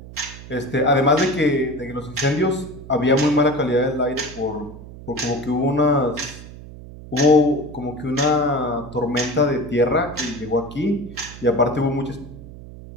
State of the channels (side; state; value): right; noise; hum, 15 dB below the sound